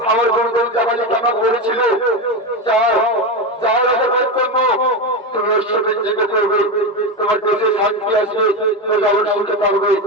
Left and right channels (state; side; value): normal; both; correlation 0.15